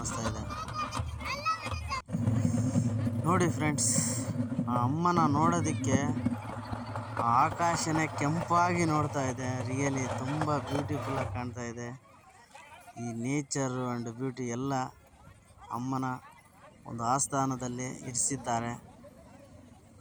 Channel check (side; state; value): both; identical; correlation 1.00